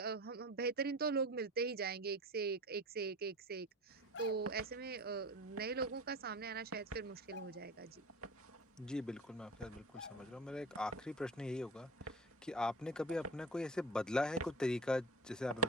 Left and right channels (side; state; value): both; normal; correlation 0.35